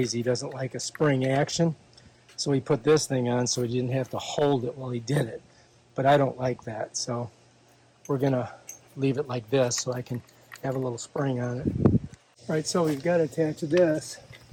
doesn't like a spring action. So he put this thing on so he didn't have to hold it while he did it. But I don't like that, so we're going to leave it like this so I can have a little spring on it. All right, so we've got to attach this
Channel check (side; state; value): both; identical; correlation 1.00